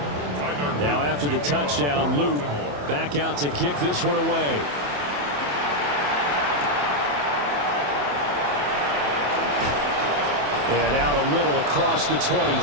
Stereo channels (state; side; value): late; left; 28 ms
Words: Now after the touchdown, Luke back out to kick this one away. And out a little across the